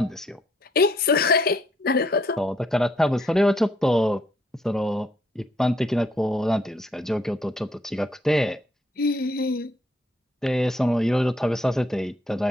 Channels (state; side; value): normal; both; correlation 0.69